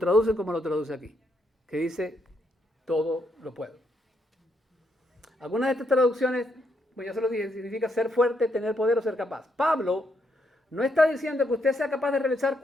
como lo traduce aquí, que dice todo lo puedo. Algunas de estas traducciones, pues ya se lo dije, significa ser fuerte, tener poder o ser capaz. Pablo no está diciendo que usted sea capaz de realizar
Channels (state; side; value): normal; both; correlation 0.77